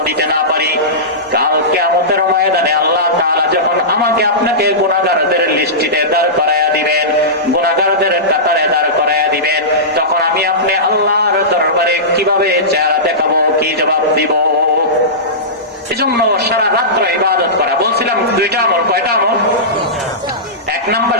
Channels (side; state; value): both; normal; correlation -0.18